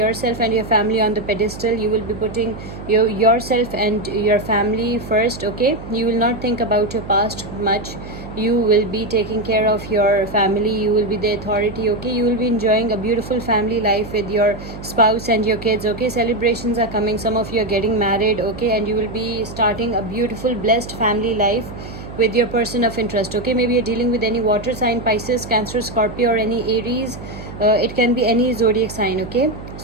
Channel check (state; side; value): noise; right; hum, 12 dB below the sound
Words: and your family on the pedestal. You will be putting yourself and your family first. Okay, you will not think about your past much. You will be taking care of your family. You will be the authority. Okay, you will be enjoying a beautiful family life with your spouse and your kids. Okay, celebrations are coming. Some of you are getting married. Okay, and you will be starting a beautiful, blessed family life with your person of interest. Okay, maybe you're dealing with any water sign, Pisces, Cancer, Scorpio, or any Aries. It can be any zodiac sign. Okay,